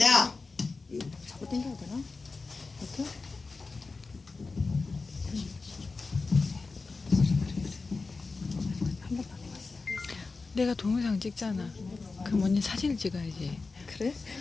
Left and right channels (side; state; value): right; quieter; 4.0 dB